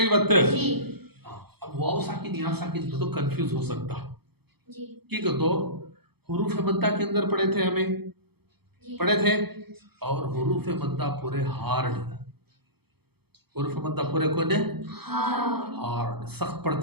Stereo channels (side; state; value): left; late; 0.97 ms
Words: बात? अब वाव साकिन या साकिन तो कंफ्यूज हो सकता कि तो हुरूफ मद्दा के अंदर पढ़े थे हमें पढ़े थे, और हुरूफ मद्दा पूरे हार्ड। हुरूफ मद्दा पूरे कौन है? हार्ड, सख्त